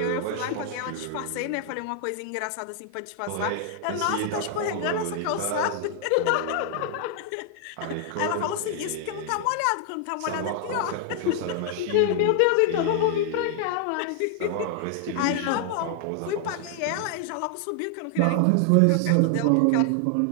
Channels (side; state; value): both; different; correlation 0.00